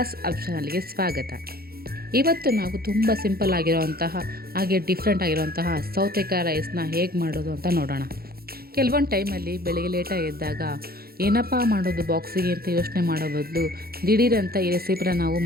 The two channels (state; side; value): late; left; 0.44 ms